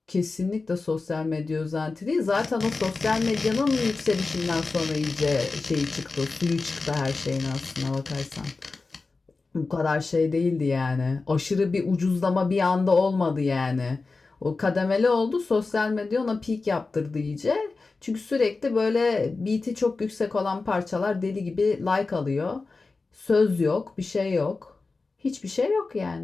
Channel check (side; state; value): right; quieter; 3.9 dB